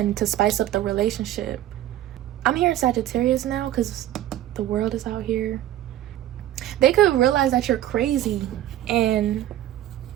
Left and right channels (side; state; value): left; quieter; 13.0 dB